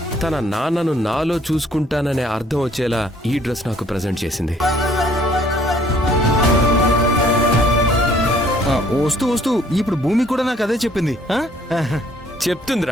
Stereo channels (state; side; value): normal; both; correlation 0.61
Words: తన నాన్నను నాలో చూసుకుంటాననే అర్థం వచ్చేలా ఈ డ్రెస్ నాకు ప్రజెంట్ చేసింది. వస్తూ వస్తూ ఇప్పుడు భూమి కూడా నాకు అదే చెప్పింది.